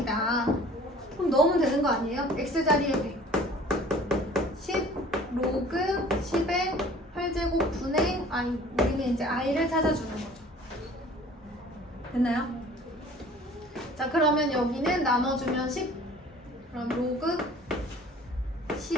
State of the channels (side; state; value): both; normal; correlation 0.49